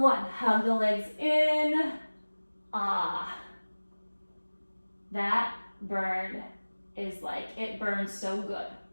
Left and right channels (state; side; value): inverted; both; correlation -1.00